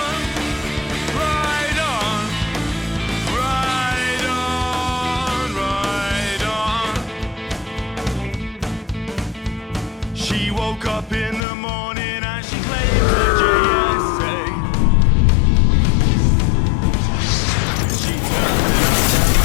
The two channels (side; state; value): right; drops out; at 11.4 s